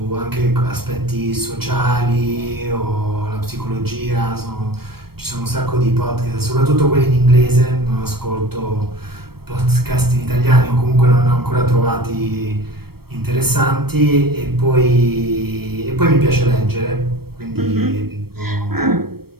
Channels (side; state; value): left; late; 0.95 ms